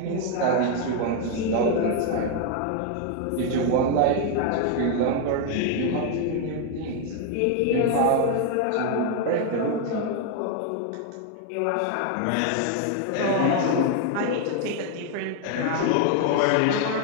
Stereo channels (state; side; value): different; both; correlation 0.01